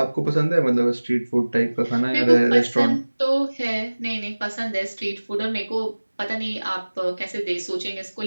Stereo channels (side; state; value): both; inverted; correlation -1.00